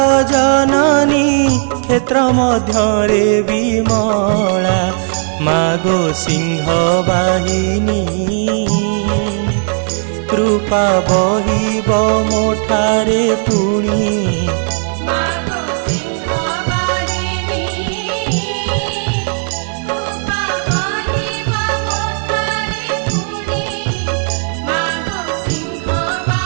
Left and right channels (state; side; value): silent; left; 59 dB below the other